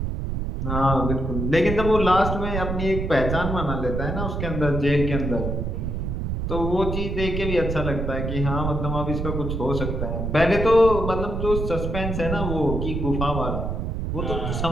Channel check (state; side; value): noise; right; rumble, 2 dB below the sound